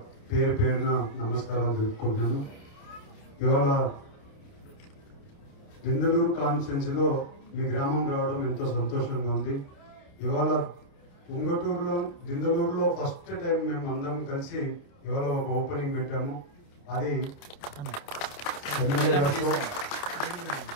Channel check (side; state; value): right; late; 28 ms